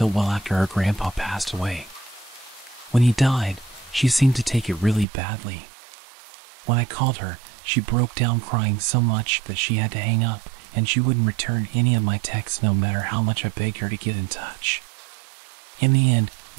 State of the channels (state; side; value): drops out; left; at 5.1 s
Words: well after her grandpa passed away. When he died, she seemed to take it really badly. When I called her, she broke down crying so much that she had to hang up, and she wouldn't return any of my texts no matter how much I begged her to get in touch. In the end,